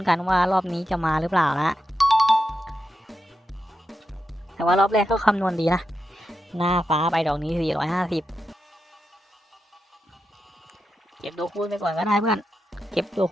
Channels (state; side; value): normal; both; correlation 0.88